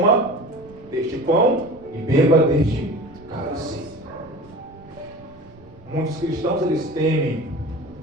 deste pão e beba deste cálice. Muitos cristãos, eles temem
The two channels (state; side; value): noise; right; rumble, 23 dB below the sound